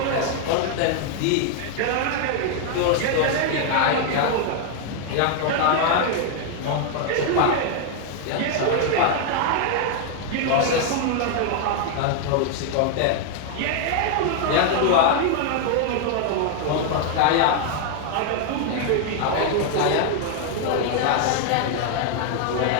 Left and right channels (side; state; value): both; different; correlation 0.00